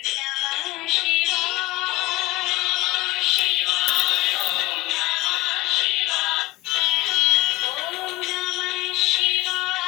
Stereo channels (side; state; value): right; quieter; 19.7 dB